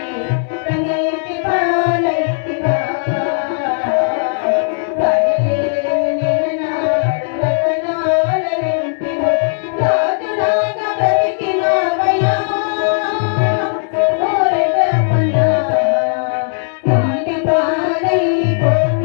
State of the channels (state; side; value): silent; right; digital silence